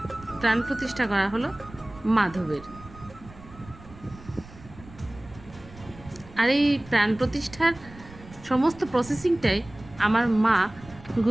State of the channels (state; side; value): noise; right; rumble, 19 dB below the sound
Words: প্রাণ প্রতিষ্ঠা করা হলো মাধবের। আর এই প্রাণ প্রতিষ্ঠার সমস্ত প্রসেসিংটাই আমার মা